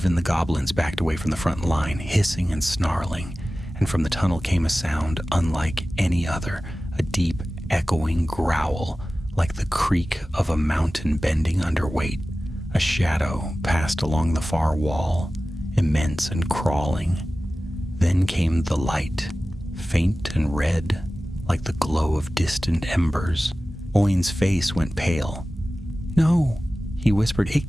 the goblins backed away from the front line, hissing and snarling, and from the tunnel came a sound unlike any other, a deep, echoing growl, like the creak of a mountain bending under weight. A shadow passed along the far wall, immense and crawling. Then came the light, faint and red, like the glow of distant embers. Owen's face went pale. "No," he whispered, "it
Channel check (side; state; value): both; normal; correlation 0.96